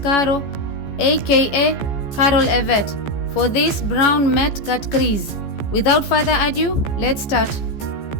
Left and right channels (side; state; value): right; late; 14 ms